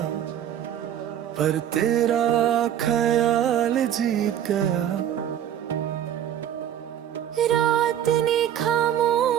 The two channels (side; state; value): left; quieter; 10.4 dB